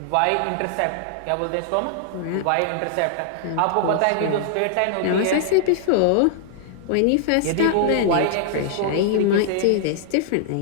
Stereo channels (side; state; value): both; different; correlation -0.01